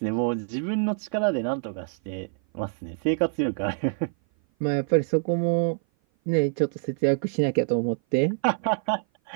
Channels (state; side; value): silent; left; 56 dB below the other